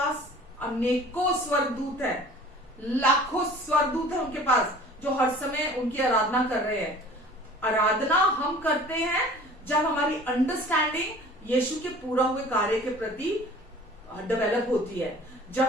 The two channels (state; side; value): normal; both; correlation 0.46